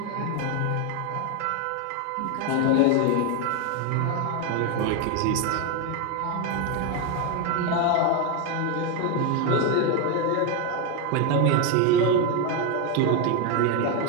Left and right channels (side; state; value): both; different; correlation 0.02